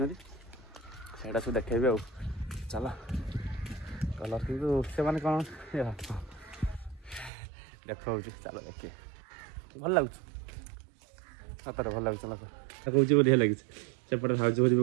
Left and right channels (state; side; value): drops out; left; at 7.3 s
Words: ସେଇଟା ସବୁ ଦେଖେଇବି ଆଉ ଚାଲ କଲର୍ କିନ୍ତୁ ସେମାନେ କ'ଣ ଦେଖାଉଛି ଚାଲ ଦେଖିବେ ଭଲ ଲାଗୁଛି ସତରେ ଭଲ ଲାଗୁଛି ଲୋକ କହୁଛି ବଢ଼ିଆ ଲାଗିଛି ସେପଟେ ଭାଉଜ ଭୋଜି